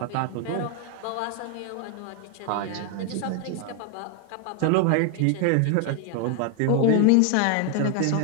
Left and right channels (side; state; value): both; different; correlation 0.01